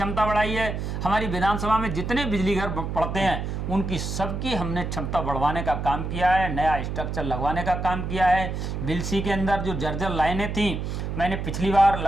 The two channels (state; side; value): noise; right; hum, 4 dB below the sound